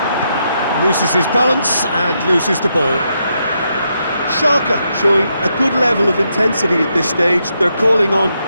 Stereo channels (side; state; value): both; inverted; correlation -0.81